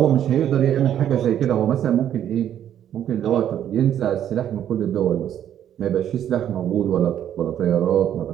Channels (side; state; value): left; quieter; 10.4 dB